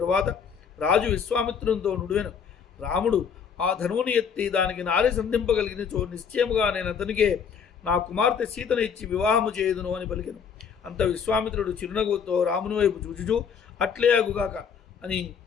రాజు విశ్వామిత్రునితో నుడివెను. రాముడు ఆ ధనువుని ఎత్తి దానికి నారి సంధింపగలిగినచో నిశ్చయముగా నేను అతనికే నా కుమార్తె సీతను ఇచ్చి వివాహము చేయుదును అని పలికెను. అంత విశ్వామిత్రుడు చిరునవ్వుతో రాముని వైపు చూచుచూ అట్లే అగుగాక అని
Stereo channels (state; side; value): quieter; right; 6.8 dB